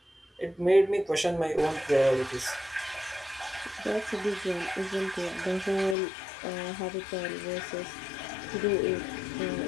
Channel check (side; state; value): right; drops out; at 6.0 s